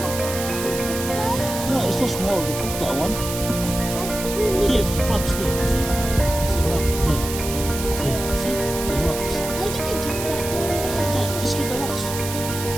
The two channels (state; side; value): noise; right; hiss, 7 dB below the sound